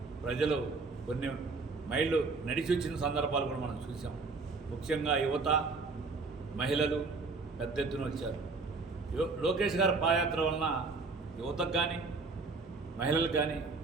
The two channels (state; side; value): quieter; left; 4.1 dB